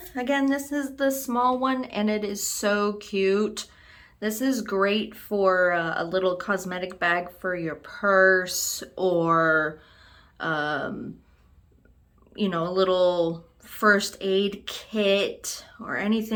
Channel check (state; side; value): identical; both; correlation 1.00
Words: Again, this is the small one and it is so cute. This is great for a little cosmetic bag for your purse, or you know, a little first aid kit or